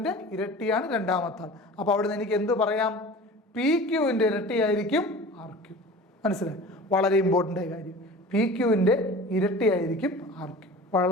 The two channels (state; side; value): normal; both; correlation 0.39